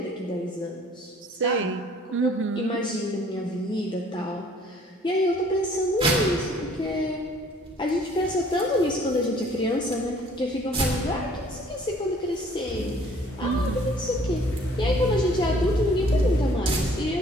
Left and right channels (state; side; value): normal; both; correlation 0.56